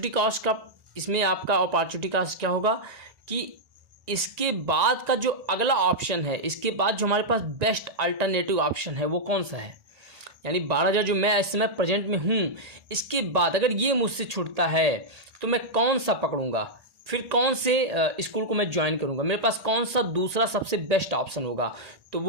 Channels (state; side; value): late; left; 1.9 ms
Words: कॉस्ट का, इसमें आपका अपॉर्चुनिटी कॉस्ट क्या होगा कि इसके बाद का जो अगला ऑप्शन है, इसके बाद जो हमारे पास बेस्ट अल्टरनेटिव ऑप्शन है वो कौन सा है, यानी 12,000 जो मैं इस समय प्रेजेंट में हूँ, इसके बाद अगर ये मुझसे छूटता है तो मैं कौन सा पकड़ूंगा, फिर कौन से स्कूल को मैं ज्वाइन करूंगा, मेरे पास कौन सा दूसरा सबसे बेस्ट ऑप्शन होगा, तो